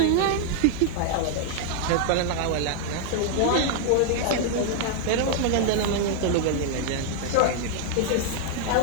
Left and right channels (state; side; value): different; both; correlation 0.00